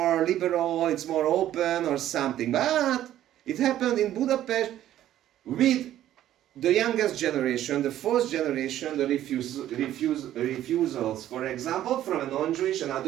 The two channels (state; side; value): quieter; left; 12.4 dB